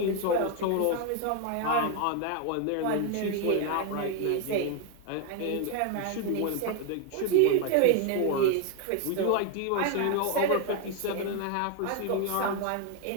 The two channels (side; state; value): both; different; correlation 0.01